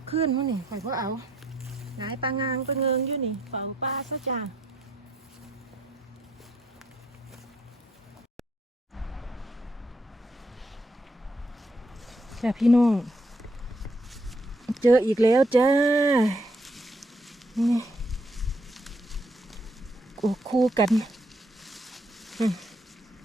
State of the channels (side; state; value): both; normal; correlation 0.72